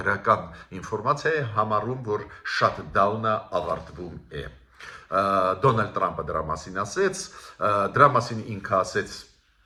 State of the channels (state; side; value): identical; both; correlation 1.00